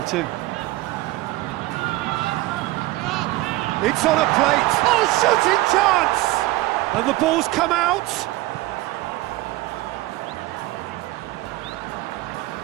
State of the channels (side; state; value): left; quieter; 18.6 dB